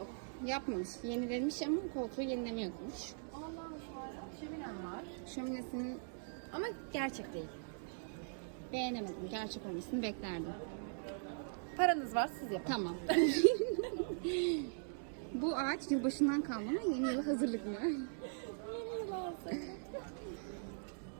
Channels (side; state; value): left; silent; digital silence